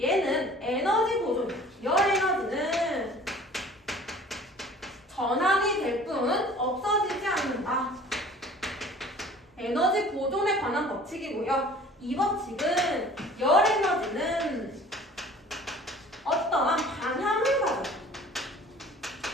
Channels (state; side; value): normal; both; correlation 0.48